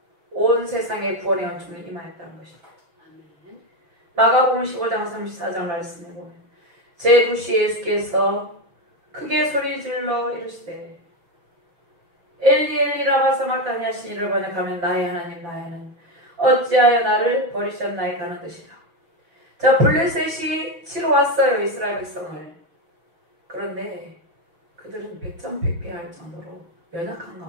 온 세상의 구원의 은총을 임하였다는 것입니다. 마가복음 15장 34장 말씀을 보면 제9시 예수께서 크게 소리질러 이르시되 엘리 엘리 라마 사마르다니 하신 이를 번역하면 나의 하나님 나의 하나님 어찌하여 나를 버리셨나이까 하는 뜻이다. 자, 블레셋이 치러 왔어요. 이스라엘 백성을. 그런데 그들은 백전백패할 정도로 연약한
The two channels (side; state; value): left; late; 5.9 ms